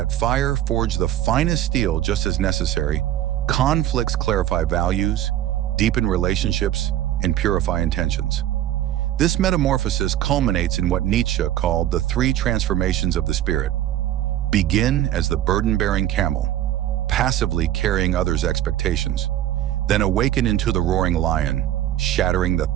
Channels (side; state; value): left; quieter; 12.6 dB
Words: fire forges the finest steel just as necessary. Conflicts clarify values, deepen relationships, and purify intentions. This metamorphosis culminates in what Nietzsche called the three transformations of the spirit. Begin as the burden-bearing camel, passively carrying others' expectations, then awaken into the roaring lion, shattering the